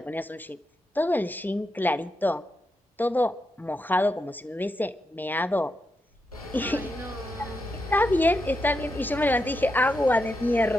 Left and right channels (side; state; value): both; normal; correlation 0.85